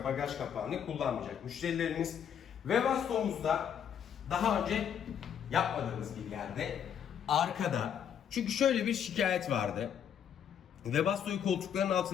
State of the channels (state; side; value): quieter; right; 8.6 dB